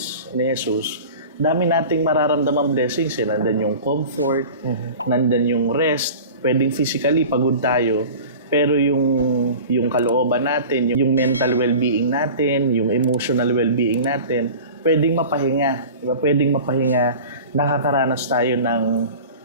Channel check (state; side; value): inverted; both; correlation -0.38